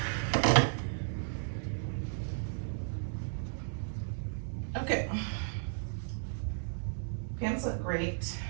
Okay. Pants look great.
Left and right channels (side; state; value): left; silent; digital silence